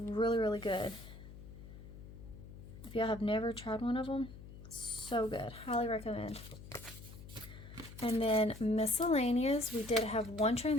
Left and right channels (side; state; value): left; noise; hum, 15 dB below the sound